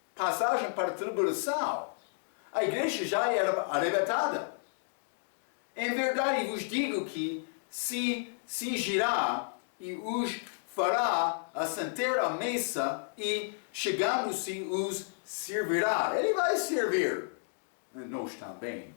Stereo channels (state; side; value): silent; right; digital silence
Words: Passagem para a tribulação. A igreja já era arrebatada. Em verdade vos digo que se cingirá e os fará assentar à mesa e, chegando-se, os servirá. Ele vai servir. Nós também,